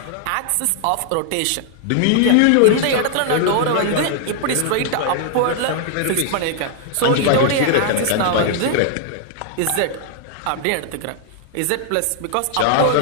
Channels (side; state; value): both; different; correlation -0.01